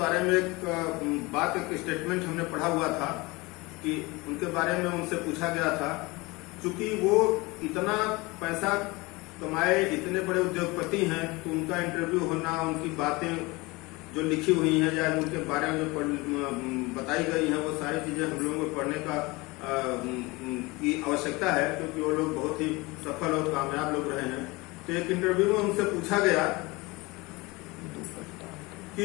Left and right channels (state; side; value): quieter; right; 23.8 dB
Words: में एक स्टेटमेंट हमने पढ़ा हुआ था कि उनके बारे में उनसे पूछा गया था, चूंकि वो इतना पैसा कमाए, इतने बड़े उद्योगपति हैं, तो उनका इंटरव्यू होना, उनकी बातें जो लिखी हुई हैं या उनके बारे में जो बताई गई हैं, वो सारी चीजें हम लोगों को पढ़ने का की आवश्यकता है, क्योंकि वो लोग बहुत ही सफल और कामयाब लोग रहे हैं। तो एक इंटरव्यू में उनसे पूछा गया कि